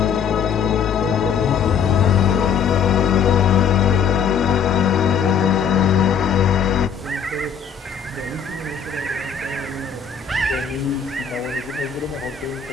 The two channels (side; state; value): right; quieter; 7.2 dB